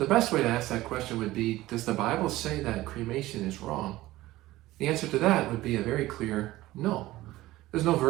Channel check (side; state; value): left; quieter; 17.1 dB